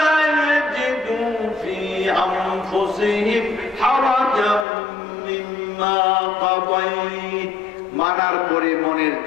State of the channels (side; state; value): right; drops out; at 4.7 s